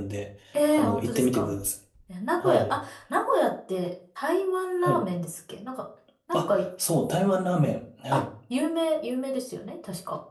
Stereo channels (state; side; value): identical; both; correlation 1.00